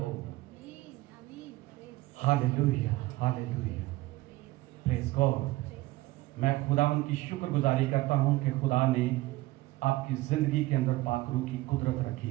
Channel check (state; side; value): quieter; left; 18.7 dB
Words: Hallelujah, hallelujah, praise God. मैं खुदावंद की शुक्रगुजारी करता हूं कि खुदा ने आपकी जिंदगी के अंदर पाक रूह की कुदरत